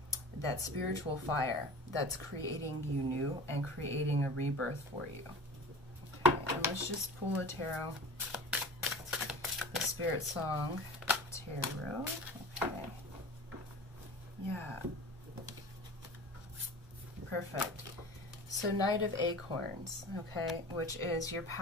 that spiritual fire that's creating you new and creating a rebirth for you. Okay, and let's just pull a tarot. The Spiritsong tarot. Okay. Yeah. Perfect. So Knight of Acorns, okay, which is your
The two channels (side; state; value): both; normal; correlation 0.36